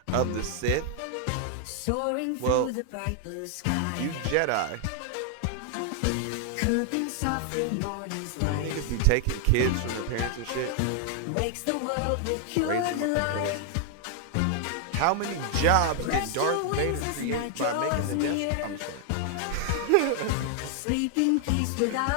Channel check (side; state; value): both; different; correlation 0.00